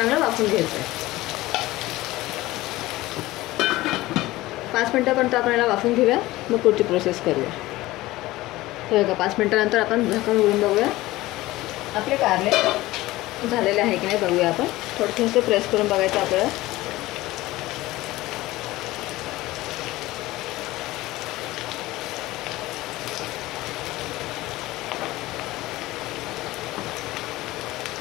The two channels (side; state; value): right; quieter; 18.1 dB